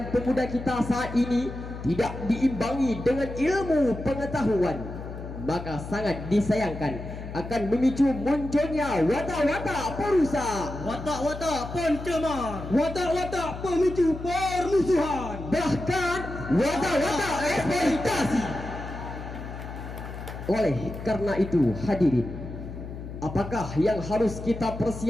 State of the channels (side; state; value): left; noise; hum, 10 dB below the sound